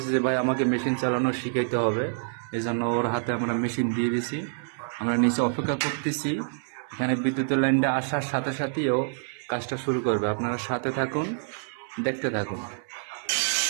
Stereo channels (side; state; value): left; silent; 60 dB below the other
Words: যে ভাই আমাকে মেশিন চালানো শিখাইতে হবে। এই জন্য ওর হাতে আমরা মেশিন দিয়ে দিছি। আমরা নিচে অপেক্ষা করতেছি, এখানে বিদ্যুতের লাইনটা আসার সাথে সাথেই ও কাজটা শুরু করবে। আপনারা সাথে থাকুন, দেখতে থাকুন।